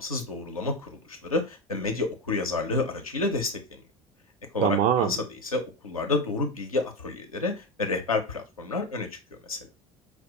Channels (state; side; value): normal; both; correlation 0.14